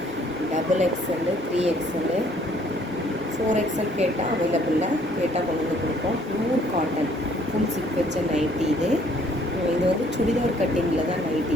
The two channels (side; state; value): both; normal; correlation 0.62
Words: double XL, 3XL, 4XL கேட்டால் அவைலபிளில், கேட்டால் கொண்டு வந்து கொடுப்போம். பியூர் காட்டன் ஃபுல் சிப் வச்ச நைட்டி இது. இது வந்து சுடிதார் கட்டிங்கில் தான் நைட்டி